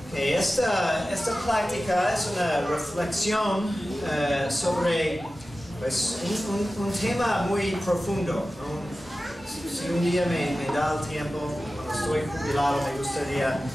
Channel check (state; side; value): normal; both; correlation 0.95